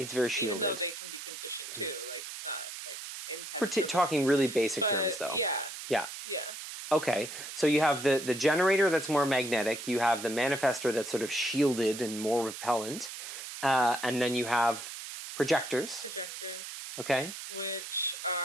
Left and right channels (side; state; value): right; noise; hiss, 9 dB below the sound